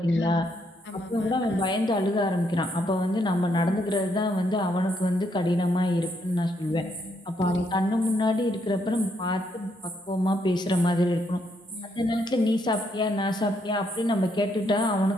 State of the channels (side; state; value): both; normal; correlation 0.75